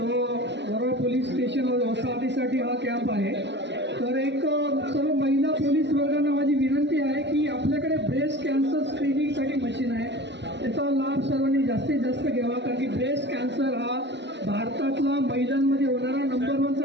वरोरा पोलीस स्टेशन वसाहतीसाठी हा कॅम्प आहे. तर एक सर्व महिला पोलीस वर्गांना माझी विनंती आहे की आपल्याकडे ब्रेस्ट कॅन्सर स्क्रीनिंगसाठी मशीन आहे, त्याचा लाभ सर्वांनी जास्तीत जास्त घ्यावा. कारण की ब्रेस्ट कॅन्सर हा भारतातला महिलांमध्ये होणारा नंबर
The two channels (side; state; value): left; late; 0.51 ms